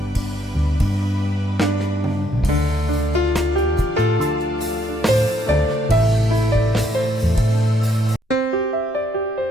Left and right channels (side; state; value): both; normal; correlation 0.71